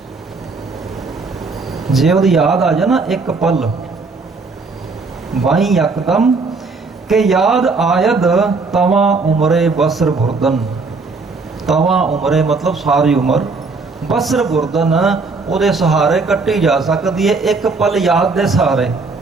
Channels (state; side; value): quieter; left; 4.1 dB